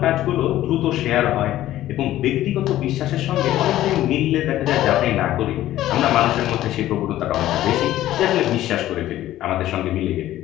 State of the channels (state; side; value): quieter; right; 14.0 dB